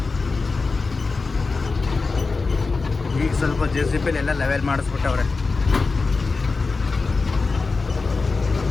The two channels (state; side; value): quieter; right; 4.1 dB